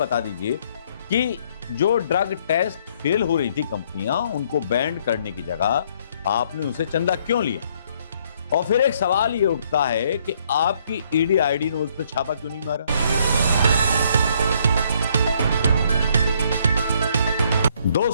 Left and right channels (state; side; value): inverted; both; correlation -0.67